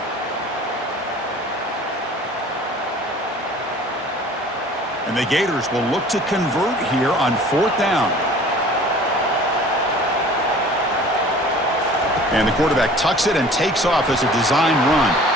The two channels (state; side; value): normal; both; correlation 0.47